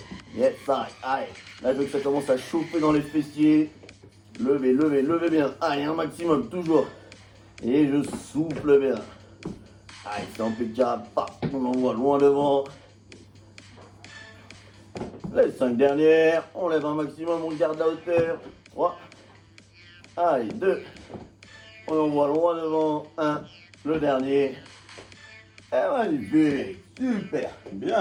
Yes, allez. Là, je veux que ça commence à chauffer dans les fessiers. Levez, levez, levez bien. Allez, un maximum, toujours. Et je souffle bien. Allez, c'est impeccable. On envoie loin devant. Les 5 dernières. On lève un maximum, on garde la hauteur. 3. Allez, 2. On envoie loin devant. 1. Le dernier. Et magnifique. Super.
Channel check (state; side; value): identical; both; correlation 1.00